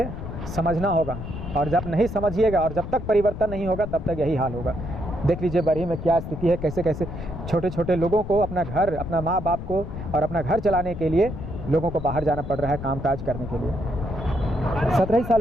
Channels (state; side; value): noise; left; rumble, 8 dB below the sound